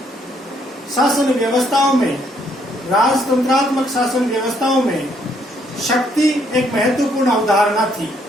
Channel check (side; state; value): both; normal; correlation 0.70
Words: शासन व्यवस्थाओं में, राजतंत्रात्मक शासन व्यवस्थाओं में शक्ति एक महत्वपूर्ण अवधारणा थी,